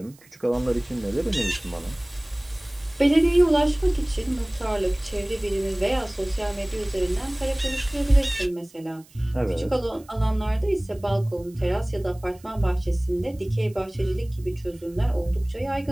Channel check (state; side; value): noise; right; hiss, 27 dB below the sound